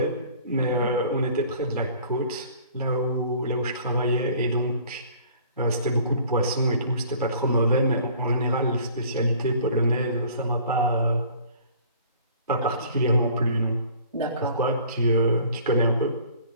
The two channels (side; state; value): both; inverted; correlation -0.51